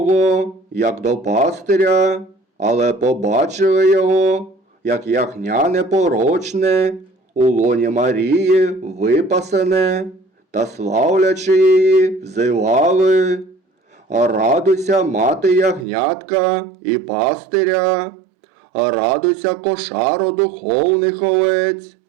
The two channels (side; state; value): left; drops out; at 15.9 s